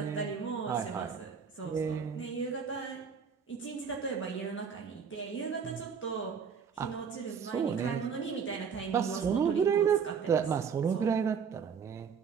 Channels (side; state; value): left; quieter; 6.5 dB